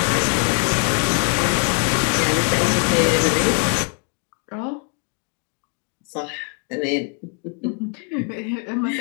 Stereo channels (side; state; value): right; quieter; 39.3 dB